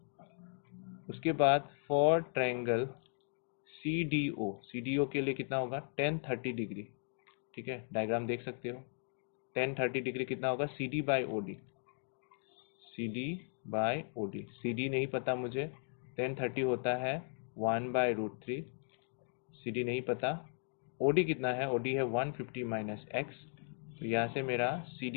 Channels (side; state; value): right; silent; 53 dB below the other